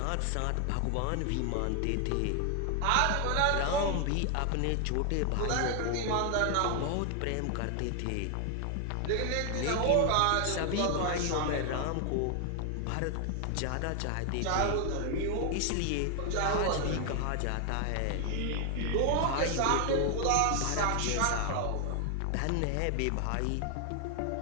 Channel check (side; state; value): both; different; correlation 0.00